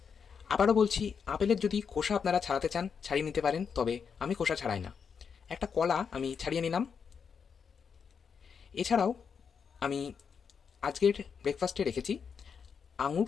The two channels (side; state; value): right; quieter; 6.4 dB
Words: আবারও বলছি, আপেলের যদি খোসা আপনারা ছাড়াতে চান ছাড়িয়ে নিতে পারেন, তবে আমি খোসা ছাড়াই না। একটা কলা আমি ছাড়িয়ে নিলাম। এছাড়াও আমি আজকের ব্রেকফাস্টে রেখেছি আঙুর